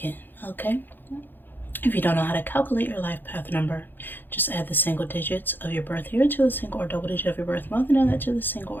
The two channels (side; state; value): right; late; 0.093 ms